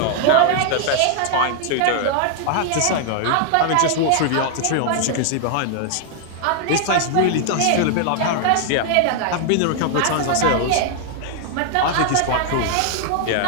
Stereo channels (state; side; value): different; both; correlation 0.00